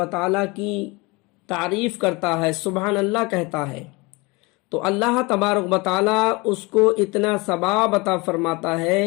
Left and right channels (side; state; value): right; quieter; 25.0 dB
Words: تعالیٰ کی تعریف کرتا ہے، سبحان اللہ کہتا ہے، تو اللہ تبارک و تعالیٰ اس کو اتنا ثواب عطا فرماتا ہے